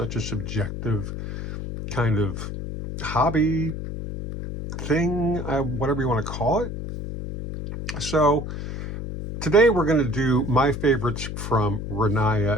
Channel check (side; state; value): left; noise; hum, 6 dB below the sound